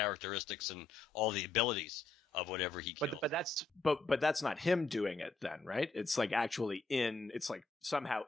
and all the abilities of whatever he killed. But that's not him doing it then, right? It's like actually it's like somehow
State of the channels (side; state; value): right; quieter; 3.7 dB